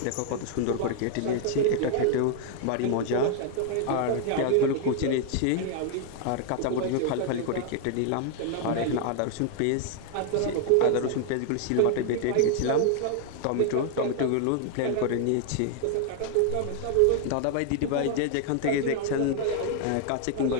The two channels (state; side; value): different; both; correlation 0.00